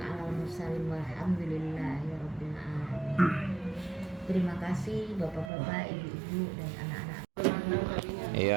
mursalin walhamdulillahi rabbil alamin. Terima kasih Bapak-bapak, Ibu-ibu dan anak-anak.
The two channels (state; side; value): drops out; left; at 5.5 s